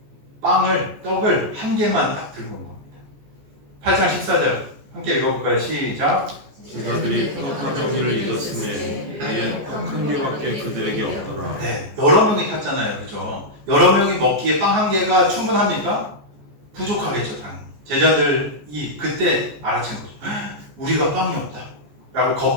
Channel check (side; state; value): left; late; 14 ms